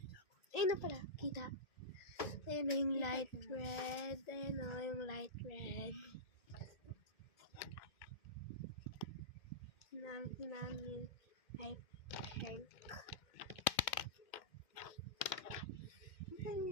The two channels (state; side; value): late; right; 2.1 ms